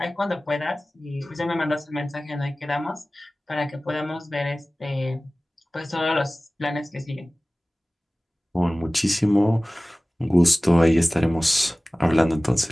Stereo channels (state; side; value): normal; both; correlation 0.98